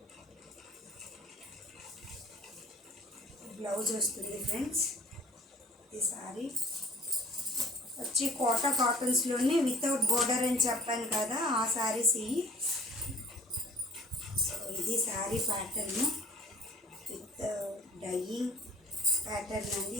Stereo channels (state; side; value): normal; both; correlation 0.52